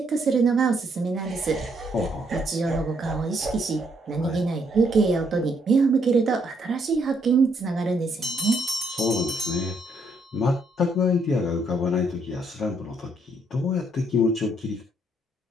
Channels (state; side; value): normal; both; correlation 0.72